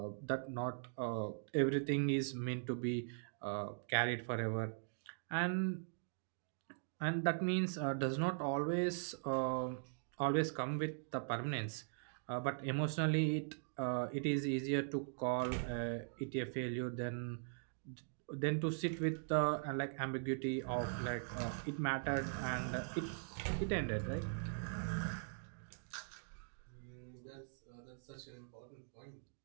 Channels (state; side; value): silent; left; digital silence